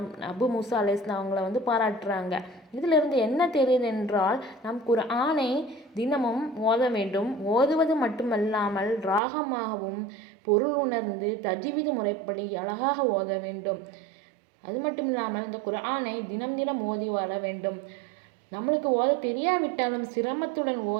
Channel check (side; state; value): left; drops out; at 9.2 s